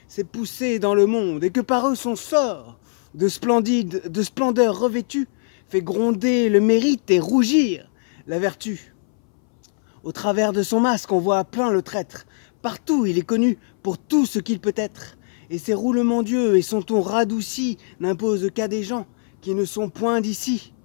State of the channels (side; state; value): right; silent; 62 dB below the other